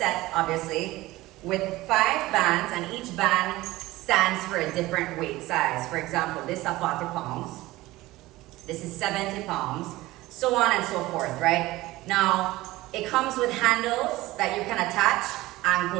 obviously, with 5 bands, and each band stands for a different weight size. For example, this is 40 pounds, this is 70 pounds, so on and so forth, right? Now, it comes with handles that you can attach,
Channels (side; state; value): left; quieter; 18.4 dB